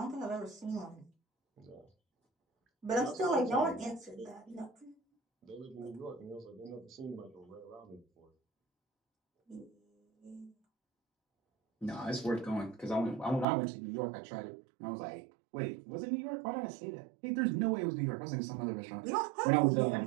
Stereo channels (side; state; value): left; drops out; at 13.5 s